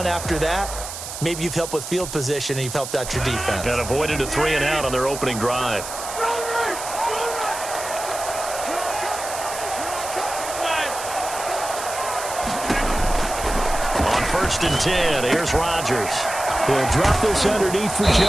after that, maybe you've helped with field position and you've helped out your defense. And avoided a 3 and out on their opening drive. On 1st and 10, here's Rodgers. He'll drop this underneath for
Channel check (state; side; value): noise; right; hiss, 9 dB below the sound